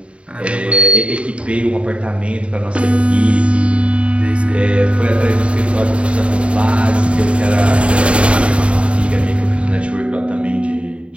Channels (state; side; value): late; left; 0.060 ms